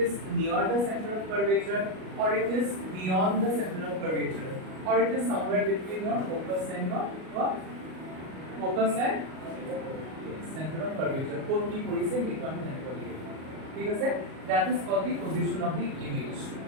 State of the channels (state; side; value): late; left; 38 ms